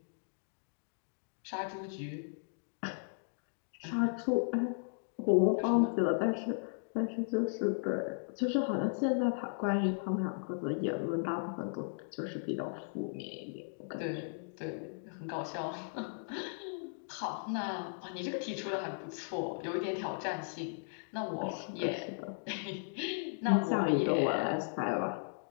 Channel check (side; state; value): right; silent; digital silence